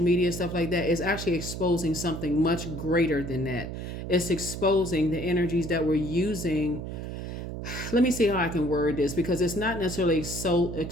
media and stuff like that, it's actually exposing something much greater than that. It's exposing the energies that we're using. Let me see how I can word this, because it's not necessarily so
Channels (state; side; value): noise; right; hum, 7 dB below the sound